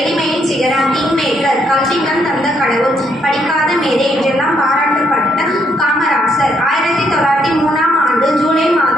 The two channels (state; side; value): normal; both; correlation 0.73